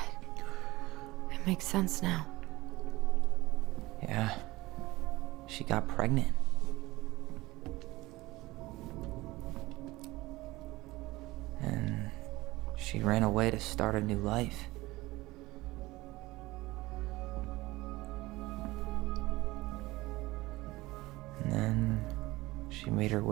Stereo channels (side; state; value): left; quieter; 19.7 dB